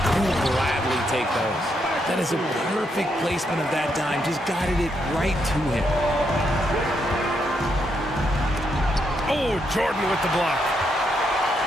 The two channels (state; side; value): normal; both; correlation 0.79